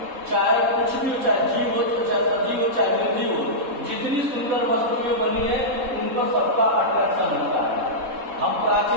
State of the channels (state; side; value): late; left; 3.7 ms